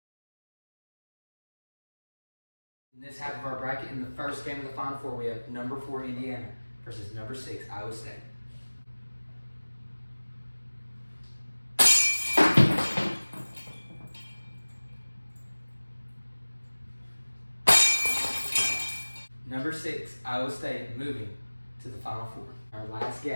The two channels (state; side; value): inverted; both; correlation -1.00